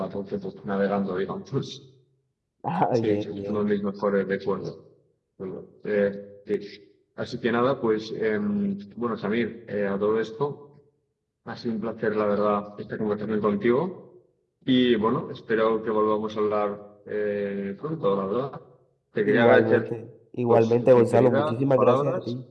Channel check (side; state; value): both; identical; correlation 1.00